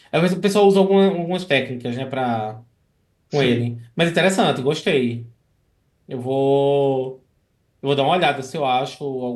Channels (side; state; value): both; identical; correlation 1.00